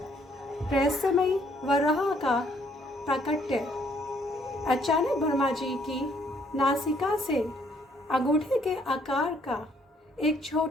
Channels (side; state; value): both; normal; correlation 0.66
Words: रहस्यमयी वराह का प्राकट्य। अचानक ब्रह्मा जी की नासिका से अंगूठे के आकार का एक